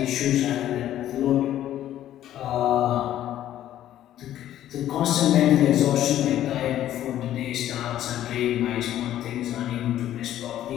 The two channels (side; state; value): right; quieter; 12.3 dB